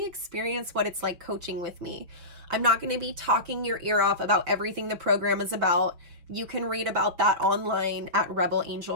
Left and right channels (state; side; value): late; left; 6.2 ms